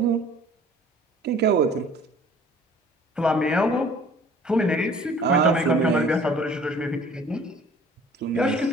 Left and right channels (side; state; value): both; normal; correlation 0.51